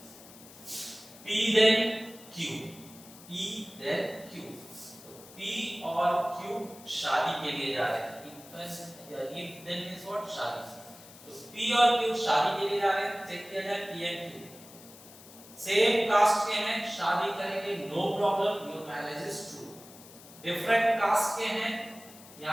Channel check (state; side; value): noise; left; hiss, 19 dB below the sound